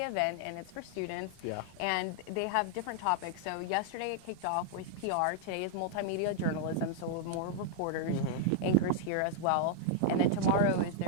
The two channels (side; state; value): both; different; correlation -0.01